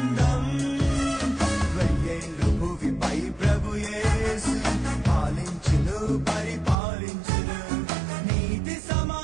వెయ్యేండ్లు భువిపై ప్రభు యేసు పాలించును పరిపాలించును నీతి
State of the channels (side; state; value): left; drops out; at 6.8 s